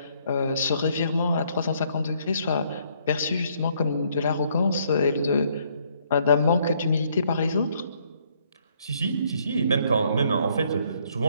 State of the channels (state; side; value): inverted; both; correlation -0.68